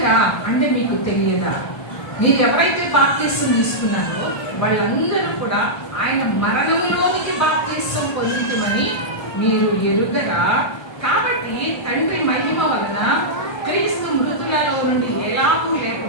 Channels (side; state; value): right; late; 1.3 ms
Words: అంటే మీకు తెలియదా? మీరు ఎవరైతే బాప్తిసం తీసుకున్నారో వాళ్ళందరూ కూడా ఆయన మరణంలోనికి బాప్తిసం పొందితమని మీరు ఎరుగరా? కాబట్టి తండ్రి మహిమ వలన క్రీస్తు మృతులలో నుండి ఎలాగూ